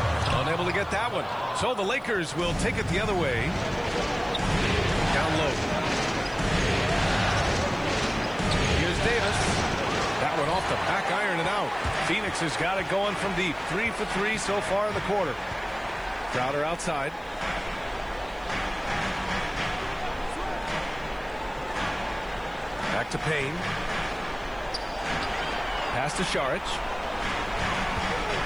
Unable to get that one. So the Lakers will take it the other way. Down low. Here's Davis. That one off the back iron and out. Phoenix has got it going from deep. 3 for 3 so far in the quarter. Crowder outside. Back to Payne. Pass to Saric.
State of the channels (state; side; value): noise; left; hiss, 30 dB below the sound